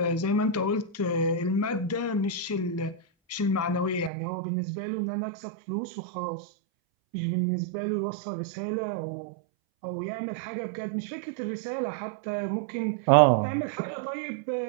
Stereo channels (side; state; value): left; drops out; at 4.1 s